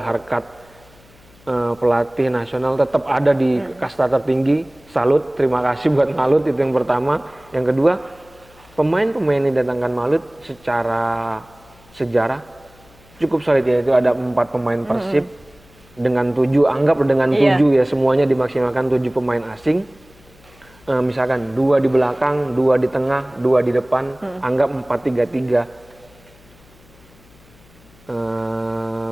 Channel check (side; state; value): left; noise; hum, 27 dB below the sound